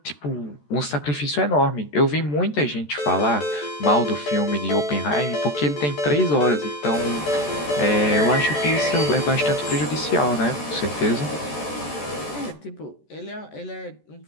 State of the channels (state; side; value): late; right; 14 ms